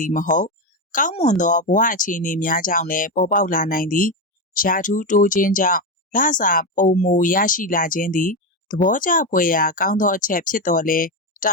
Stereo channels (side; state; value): both; normal; correlation 0.12